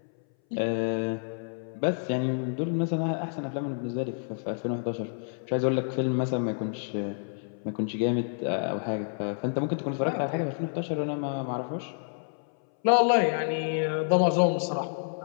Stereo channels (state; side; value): silent; right; 59 dB below the other